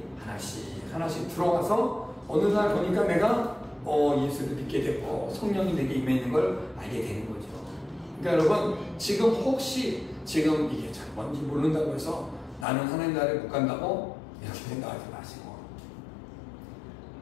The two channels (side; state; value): right; drops out; at 12.7 s